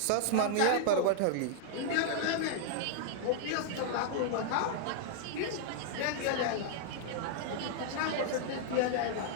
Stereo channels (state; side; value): different; both; correlation -0.01